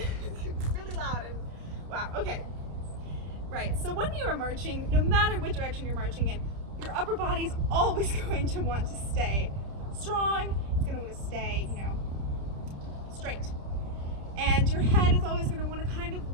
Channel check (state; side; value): late; left; 30 ms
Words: really loud and wow. Okay. Right, so when you are marching, no matter what direction you're marching in, your upper body's always going to want to stay strong. It's going to want to stay, you know, straight. And your head is always going to want to kind of,